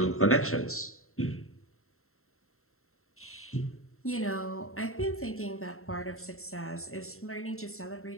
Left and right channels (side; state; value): right; late; 0.62 ms